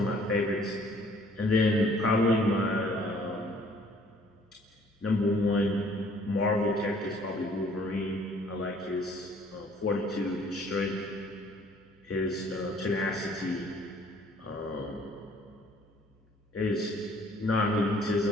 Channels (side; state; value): both; normal; correlation 0.58